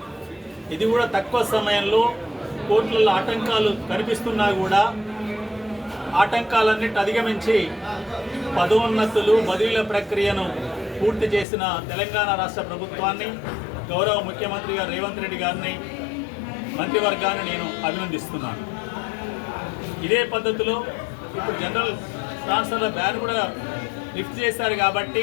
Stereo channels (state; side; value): drops out; right; at 11.5 s